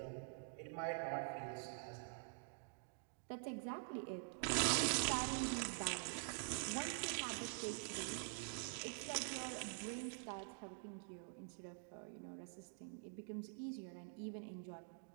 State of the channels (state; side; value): silent; left; digital silence